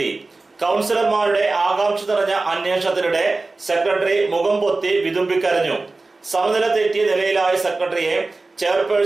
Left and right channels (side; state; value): left; quieter; 3.4 dB